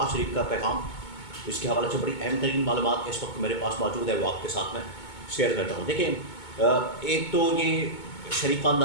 शरीफ का पैगाम, इसके हवाले से बड़ी अहम तरीन मालूमात इस वक्त मेरे पास मौजूद है, वो आपके साथ मैं शेयर करता हूँ। देखें, एक तो ये शरीफ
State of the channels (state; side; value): late; right; 2.2 ms